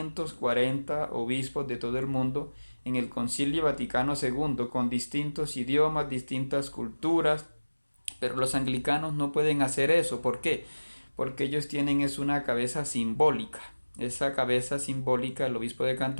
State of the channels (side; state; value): both; inverted; correlation -1.00